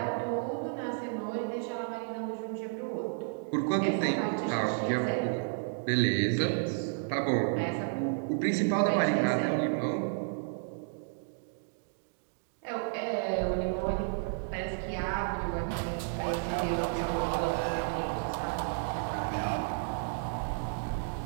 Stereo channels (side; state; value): left; silent; digital silence